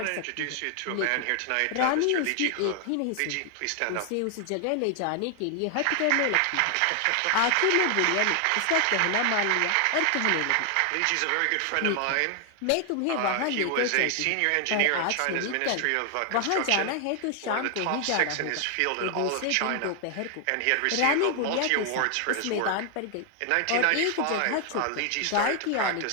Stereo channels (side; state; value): both; different; correlation 0.00